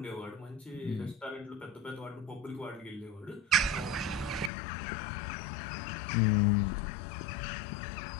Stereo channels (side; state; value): right; drops out; at 4.5 s